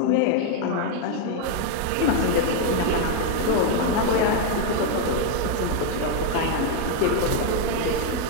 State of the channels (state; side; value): different; both; correlation 0.00